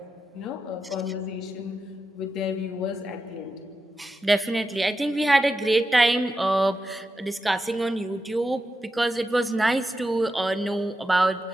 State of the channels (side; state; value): both; normal; correlation 0.89